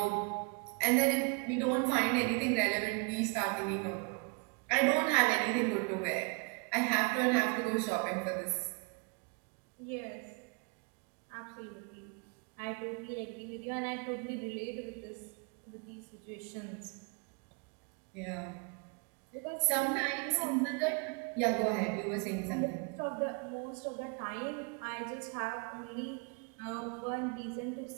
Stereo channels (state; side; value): quieter; left; 32.6 dB